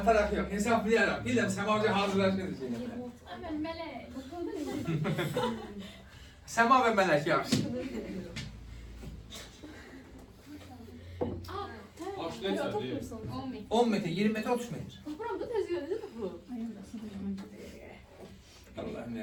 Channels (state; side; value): identical; both; correlation 1.00